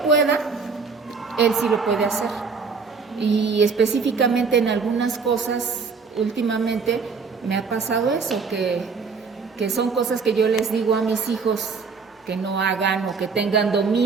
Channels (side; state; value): left; quieter; 5.0 dB